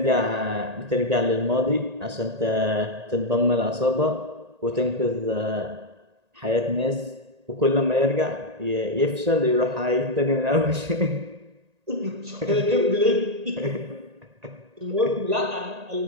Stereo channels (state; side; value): late; left; 1.8 ms